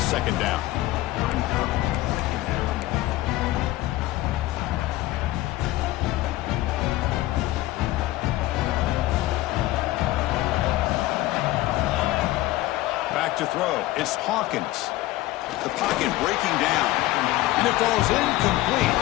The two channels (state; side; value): quieter; right; 16.9 dB